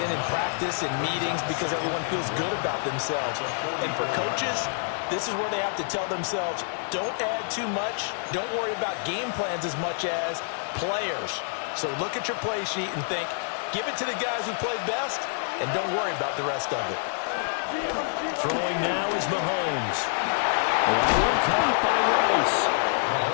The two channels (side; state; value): right; silent; digital silence